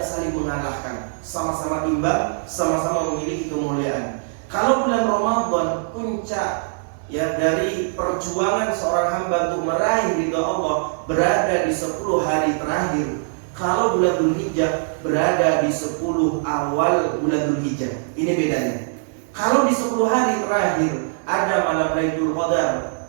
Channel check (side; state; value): left; silent; digital silence